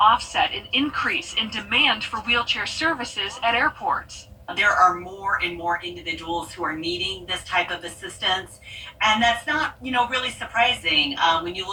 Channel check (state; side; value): identical; both; correlation 1.00